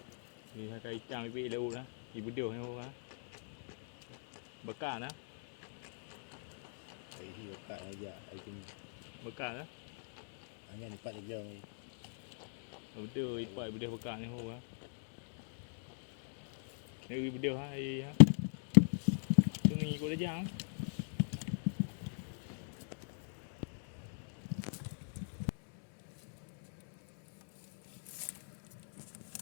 thì hai cây trang bị đâu đó thì bữa điều hay không á bậc cả đó Ai hi ka aja ai tin bậc cả đó hanya ni pat je. bữa điều vậy bữa điều bậc cả hay không á nếu bữa điều hay á tôi nghĩ có đấy chăng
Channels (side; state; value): right; silent; digital silence